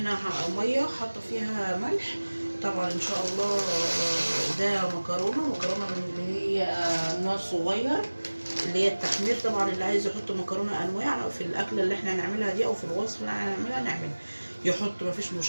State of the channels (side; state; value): both; inverted; correlation -1.00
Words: مية حاطة فيها ملح طبعا ان شاء الله. ده مكرونة من اللي هي نوع صغير، اللي هي التحمير. طبعا اللي عايز يحط مكرونة انواع في الاكلة اللي احنا هنعملها دي او في الوصفة اللي احنا هنعملها نعمل يحط، مفيش